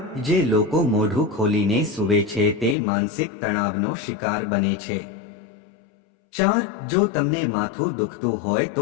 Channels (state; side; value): drops out; right; at 2.8 s